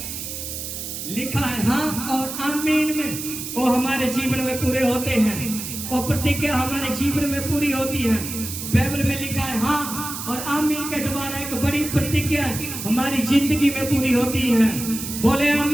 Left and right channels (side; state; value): right; noise; hiss, 7 dB below the sound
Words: लिखा है हाँ और आमीन में वो हमारे जीवन में पूरे होते हैं, और प्रतिज्ञा हमारे जीवन में पूरी होती है। बाइबल में लिखा है हाँ और आमीन के द्वारा एक बड़ी प्रतिज्ञा हमारी जिंदगी में पूरी होती है। बोले